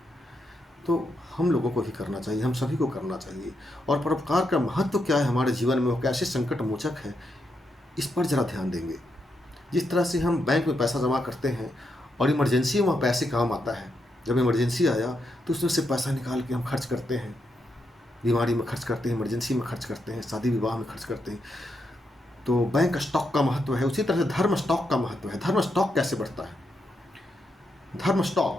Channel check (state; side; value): normal; both; correlation 0.82